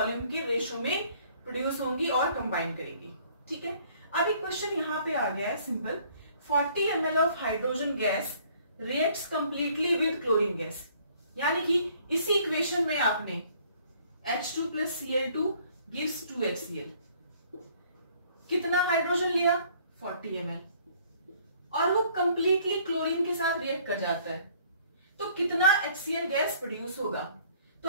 के रेशो में प्रोड्यूस होंगी और कंबाइन करेंगी. ठीक है, अब एक क्वेश्चन यहाँ पे आ गया है simple. 40 ml of hydrogen gas reacts completely with chlorine gas, यानी कि इसी इक्वेशन में आपने H2 plus Cl2 gives 2HCl. कितना हाइड्रोजन लिया, 40 ml, और वो कंप्लीटली क्लोरीन के साथ रिएक्ट कर जाता है, तो कितना HCl गैस प्रोड्यूस होगा. तो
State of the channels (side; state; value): both; inverted; correlation -0.59